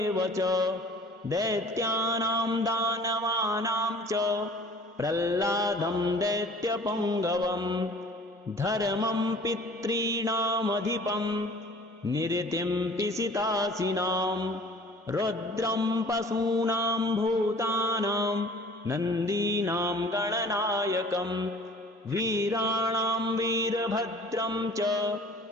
च दैत्यानां दानवानां च प्रह्लादं दैत्यपुङ्गवं धर्मं पितॄणामधिपं निरतिं पिशितासिनां रुद्रं पशूनां भूतानां नन्दीनां गणनायकं वीराणां वीरभद्रं च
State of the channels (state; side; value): normal; both; correlation 0.49